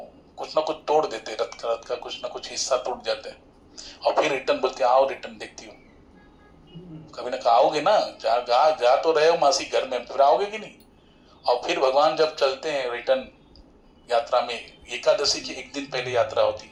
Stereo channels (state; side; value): identical; both; correlation 1.00